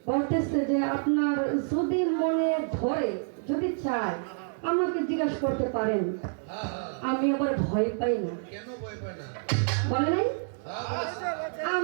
বলতেছে যে আপনার যদি মনে ধরে যদি চায় আমাকে জিজ্ঞাসা করতে পারেন, আমি আবার ভয় পাই না। কেন ভয় পায় না? বলে নাই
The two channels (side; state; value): left; silent; digital silence